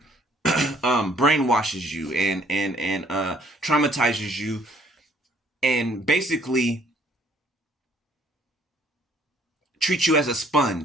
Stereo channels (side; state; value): both; normal; correlation 0.63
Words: brainwashes you and traumatizes you and basically treat you as a